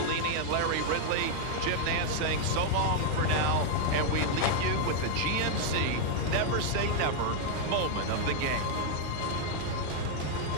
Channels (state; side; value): different; both; correlation 0.00